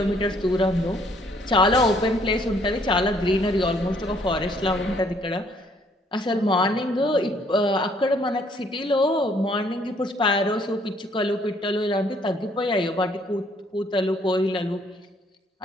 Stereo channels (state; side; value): normal; both; correlation 0.64